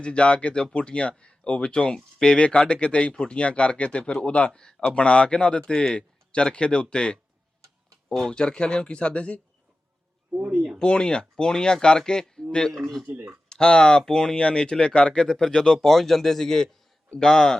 ਜਾ ਕੇ ਤੇ ਉਹ ਫੁੱਟੀਆਂ ਉਹ ਵਿੱਚੋਂ ਪੇਵੇ ਕੱਢ ਕੇ ਤੇ ਫੁੱਟੀਆਂ ਕਰਕੇ ਤੇ ਫਿਰ ਉਹਦਾ ਬਣਾ ਕੇ ਨਾ ਉਹਦੇ ਤੇ ਚਰਖੇ ਦੇ ਉੱਤੇ ਉਹ ਚਰਖੇ ਵਾਲਿਆਂ ਨੂੰ ਕੀ ਸਾਦੇ ਸੀ ਪੂਣੀਆਂ ਕਰਕੇ ਤੇ ਹਾਂ ਪੂਣੀਆਂ ਨੀਚਲੇ ਕਰਕੇ ਤੇ ਫਿਰ ਜਦੋਂ ਪਹੁੰਚ ਜਾਂਦੇ ਸੀਗੇ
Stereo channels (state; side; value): normal; both; correlation 0.94